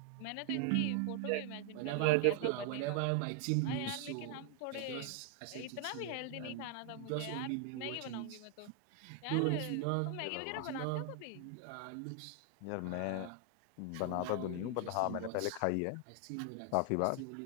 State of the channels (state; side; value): different; both; correlation 0.00